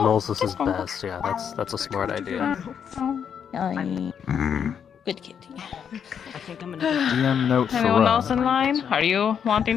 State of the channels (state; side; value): quieter; right; 7.8 dB